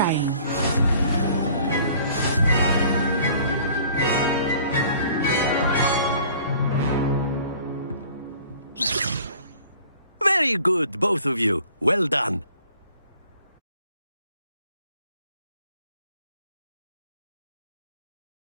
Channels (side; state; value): both; inverted; correlation -0.53